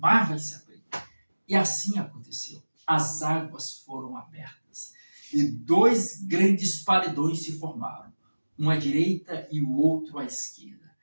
vai se abrir. E assim aconteceu. As águas foram abertas e dois grandes paredões se formaram, um à direita e o outro à esquerda.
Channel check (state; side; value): inverted; both; correlation -1.00